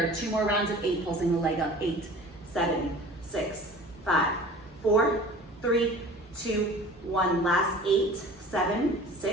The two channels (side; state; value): both; normal; correlation 0.43